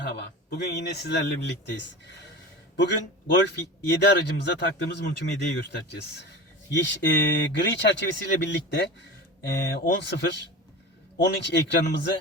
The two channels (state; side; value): normal; both; correlation 0.31